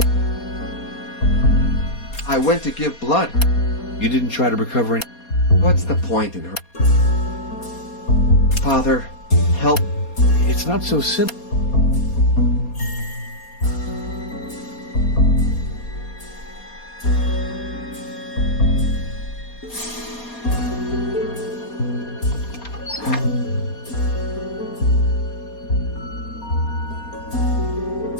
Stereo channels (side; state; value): right; late; 4.2 ms